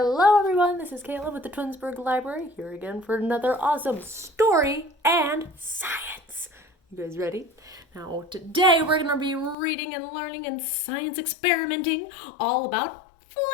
everyone, this is Kayla with the Twinsburg Library, here again for another awesome story and science. You guys ready? Now today we're going to be reading and learning and science experimenting all about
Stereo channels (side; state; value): right; drops out; at 9.6 s